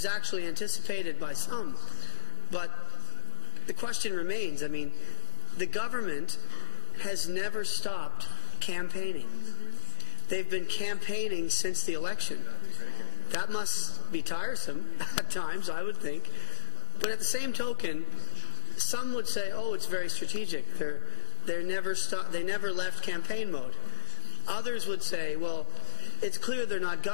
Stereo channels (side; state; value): right; silent; digital silence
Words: actually anticipated by some. But the question remains, the government has never stopped campaigning. They've been campaigning since the election. That must be tiresome at times, I would think. But at the same token, some would say, oh, it's very strategic. They never left campaign mode. Others would say, well, it's clear they're not